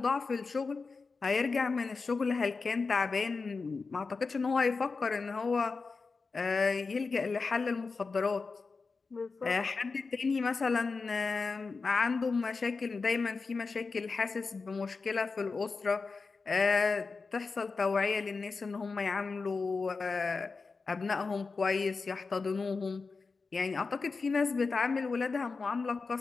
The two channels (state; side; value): quieter; right; 4.4 dB